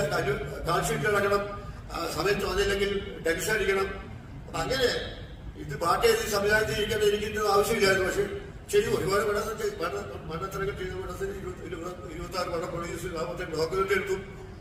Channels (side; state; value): both; identical; correlation 1.00